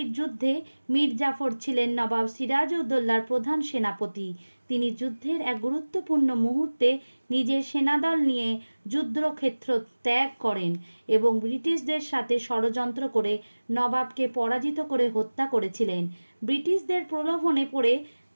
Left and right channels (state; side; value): inverted; both; correlation -1.00